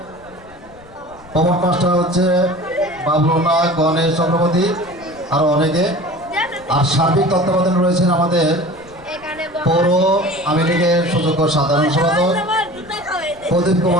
প্রমোট মাস্টার হচ্ছে বাবলুনা, গণেশ চক্রবর্তী, আরও অনেকে। আর সার্বিক তত্ত্বাবধানে রয়েছেন আমাদের পৌর আওয়ামী লীগের সুযোগ্য সাধারণ সম্পাদক প্রদীপ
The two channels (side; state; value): left; noise; rumble, 24 dB below the sound